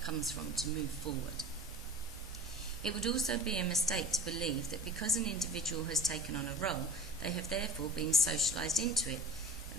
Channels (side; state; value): both; normal; correlation 0.37